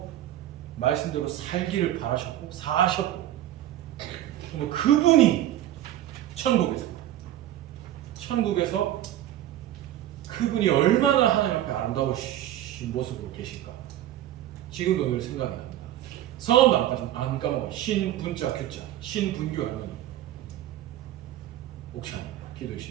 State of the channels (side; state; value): left; quieter; 12.9 dB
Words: 말씀대로 살기를 바라셨고 사셨고 그분이 천국에서 그분이 얼마나 하나님 앞에 아름다우신 모습으로 계실까 지금도 늘 생각이 납니다. 성함도 안 까먹어요. 신분자 규자 신분규 할머니 옥찬이